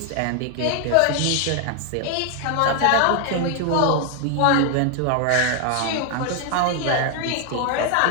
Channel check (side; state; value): both; different; correlation 0.01